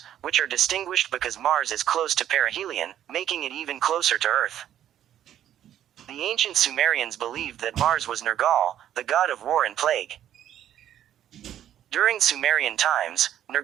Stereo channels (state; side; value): quieter; left; 11.0 dB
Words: which are distinguished because Mars is close to perihelion, making it even closer to Earth. The ancient Sumerians believed that Mars was Nergal, the god of war and plague. During Sumerian times,